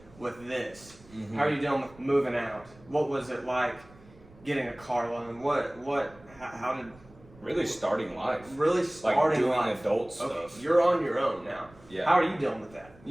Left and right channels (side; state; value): right; noise; rumble, 24 dB below the sound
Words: with this? Mhm. How are you dealing with moving out? What was it like getting a car loan? How did Really starting life. really Like starting doing life? adult stuff. Okay, you're on your own now. Yeah. How are you dealing with that?